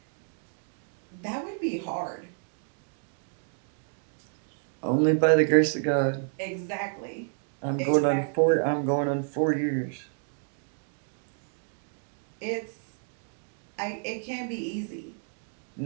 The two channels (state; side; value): silent; left; 58 dB below the other